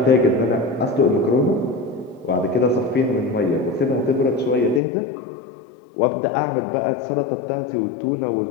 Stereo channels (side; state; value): right; drops out; at 4.8 s